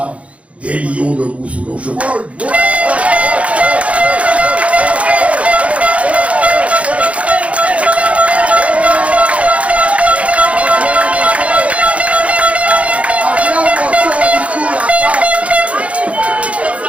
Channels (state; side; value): late; left; 0.064 ms